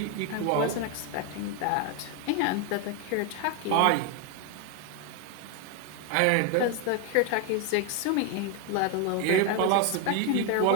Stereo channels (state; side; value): different; both; correlation 0.01